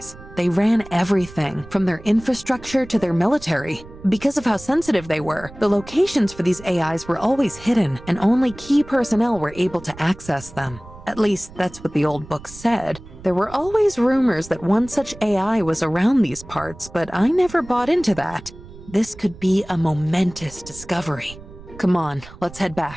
They ran everything, from their infrastructure to their military. Because of how sensitive they were, the locations for these AIs were always hidden, and only key personnel were able to access them. At least, that's what the old book said. There were always rumors that one such AI was around these parts, but I never bought into that. This could be a momentous discovery. Come on, let's head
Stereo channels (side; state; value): right; noise; rumble, 18 dB below the sound